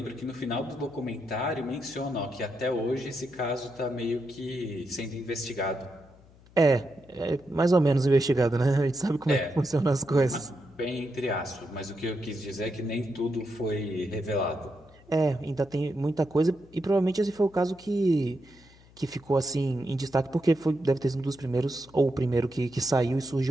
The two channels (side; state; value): left; noise; hum, 26 dB below the sound